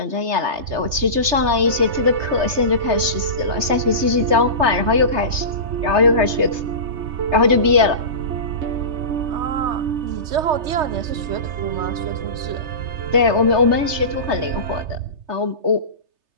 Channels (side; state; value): left; late; 3.3 ms